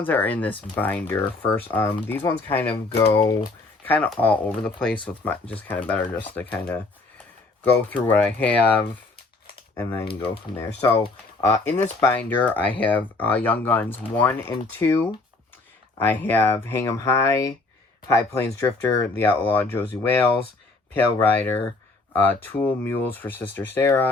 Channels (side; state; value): right; quieter; 3.4 dB